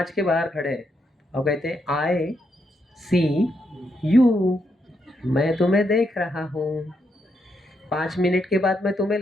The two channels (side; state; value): both; normal; correlation 0.79